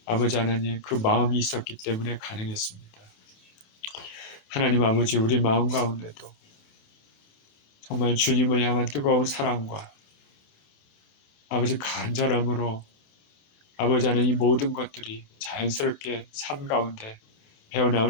아버지 하나님 그 마음이 있었기 때문에 가능했습니다. 하나님 아버지 우리 마음 가운데도 정말 주님을 향한 뜨거운 사랑과 아버지 간절함으로 아버지 하나님 이 모든 것들이 자연스럽게 삶 가운데 배어나올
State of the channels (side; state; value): right; late; 29 ms